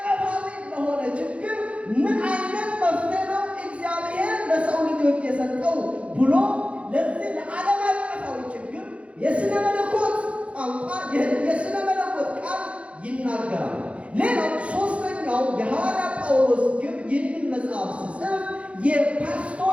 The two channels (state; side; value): late; left; 0.062 ms